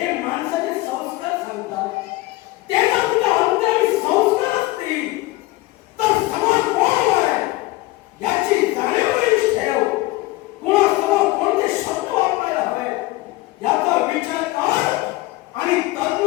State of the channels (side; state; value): right; quieter; 19.6 dB